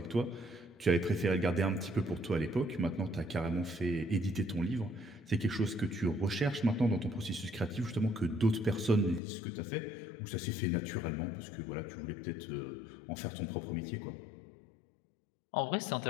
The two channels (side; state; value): right; drops out; at 9.2 s